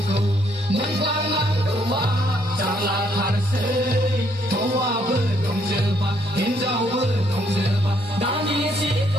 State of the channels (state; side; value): normal; both; correlation 0.70